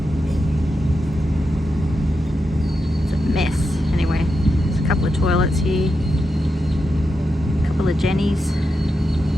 It's a mess. Anyway, there's a couple of toilets here, a couple of Jennies.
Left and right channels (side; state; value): both; normal; correlation 0.87